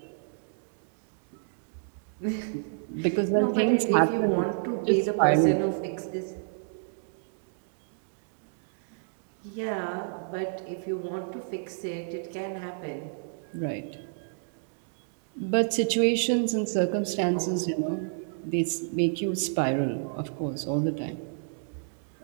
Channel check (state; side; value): silent; left; digital silence